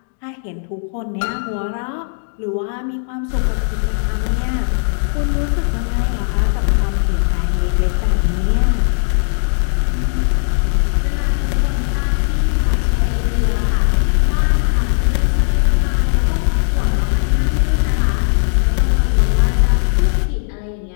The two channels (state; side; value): silent; right; digital silence